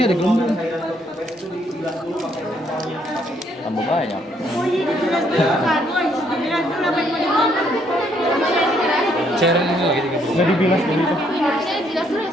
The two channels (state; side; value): normal; both; correlation 0.69